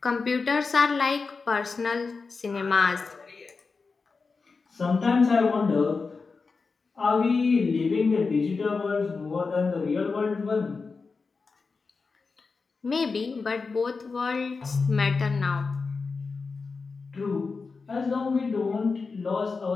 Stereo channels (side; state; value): right; quieter; 4.5 dB